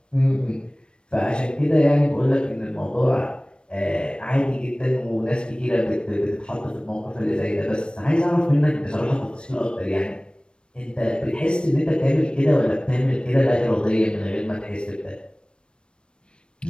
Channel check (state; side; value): late; right; 0.055 ms